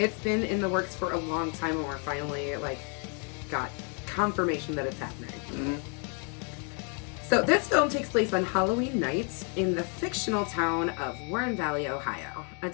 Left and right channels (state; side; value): quieter; right; 39.1 dB